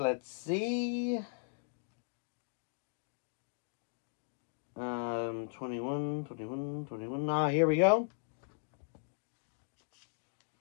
see. 21. Ah, here we go.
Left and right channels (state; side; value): silent; right; digital silence